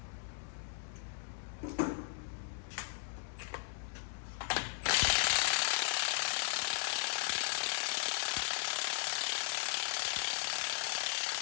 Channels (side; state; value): right; silent; 53 dB below the other